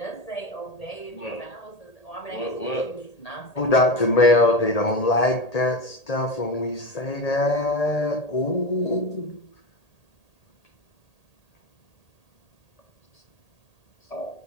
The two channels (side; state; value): right; late; 1.8 ms